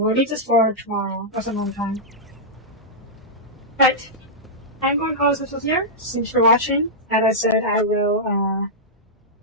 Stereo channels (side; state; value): both; normal; correlation -0.10